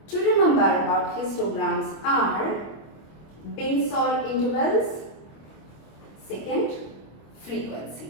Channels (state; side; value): late; right; 26 ms